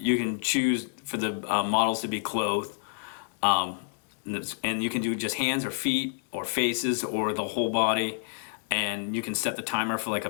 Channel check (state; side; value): silent; right; digital silence